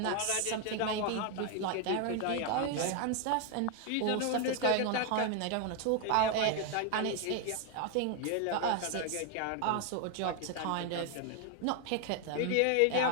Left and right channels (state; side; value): different; both; correlation 0.01